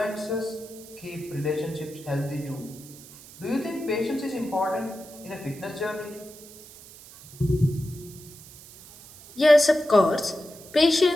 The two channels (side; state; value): right; noise; hiss, 19 dB below the sound